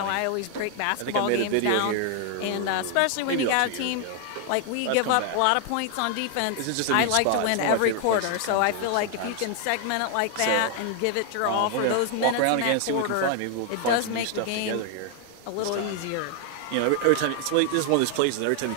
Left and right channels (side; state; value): both; different; correlation 0.00